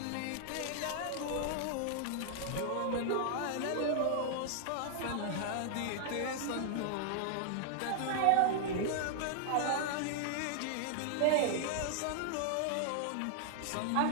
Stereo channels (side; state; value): both; different; correlation -0.01